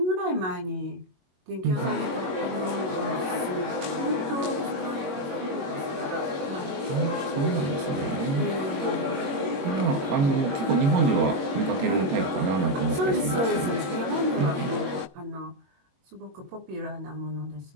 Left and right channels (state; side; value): late; left; 21 ms